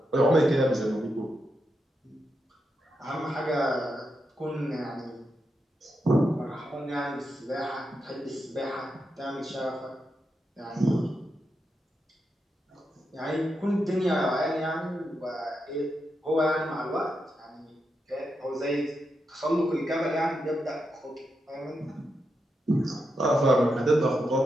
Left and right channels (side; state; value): both; normal; correlation 0.85